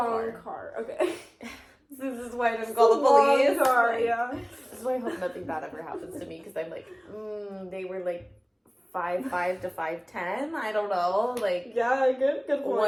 car. Okay. This is why I didn't call the police. Car, yeah. This is why I hope nothing bad ever happens to me, because I'm they were 5'5" to 5'10". I don't know. Yeah, good point.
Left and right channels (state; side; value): identical; both; correlation 1.00